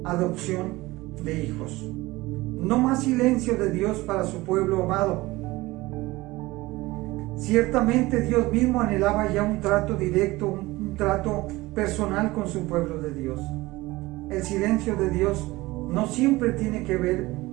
adopción de hijos. No más silencio de Dios para su pueblo amado. Ciertamente Dios mismo anhelaba ya un trato directo, un trato personal con su pueblo de Dios. El silencio de Dios no siempre tiene que ver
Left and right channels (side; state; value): left; quieter; 20.0 dB